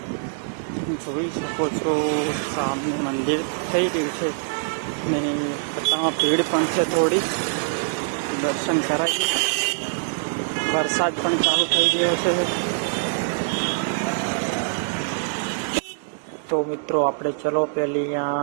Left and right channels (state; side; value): silent; left; 59 dB below the other